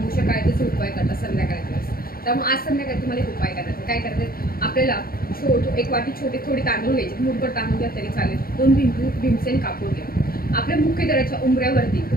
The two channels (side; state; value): right; late; 0.43 ms